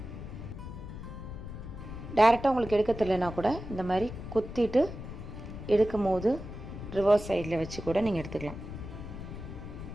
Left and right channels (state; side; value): noise; left; rumble, 10 dB below the sound